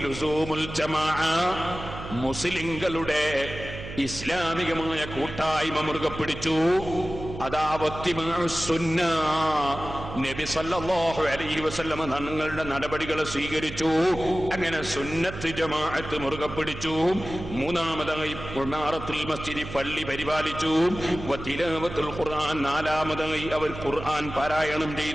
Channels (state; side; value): noise; right; hum, 10 dB below the sound